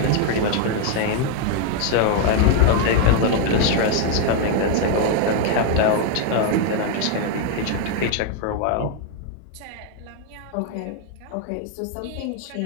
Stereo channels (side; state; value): both; different; correlation 0.00